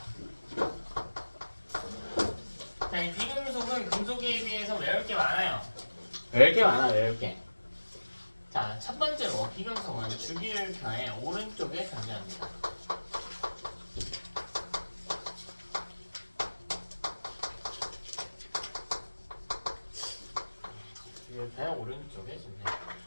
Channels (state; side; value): inverted; both; correlation -1.00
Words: 자, 이 비금속은 금속에 비해서 외울 게 많아요. 외울 게 많아, 외울 게. 자, 첫 번째로 비금속은 주기율표의 오른쪽에 존재합니다. 주기율표의 오른쪽에 존재.